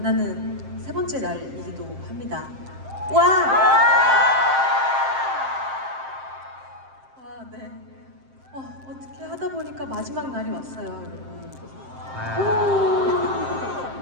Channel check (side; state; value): left; late; 7.6 ms